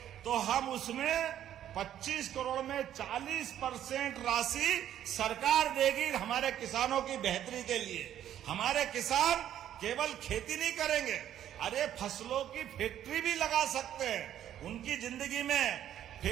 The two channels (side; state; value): left; quieter; 11.1 dB